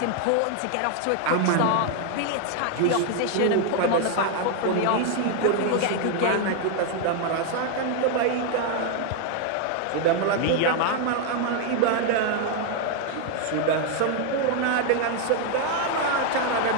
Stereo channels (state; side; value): different; both; correlation 0.00